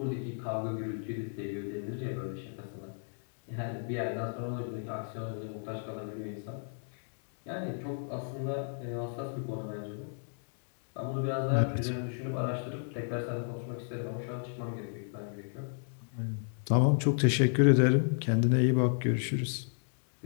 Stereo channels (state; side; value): silent; right; digital silence